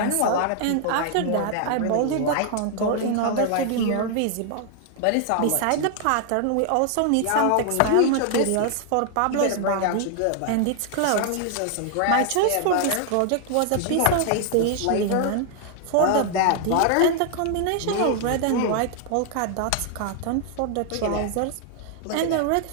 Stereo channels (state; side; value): different; both; correlation 0.00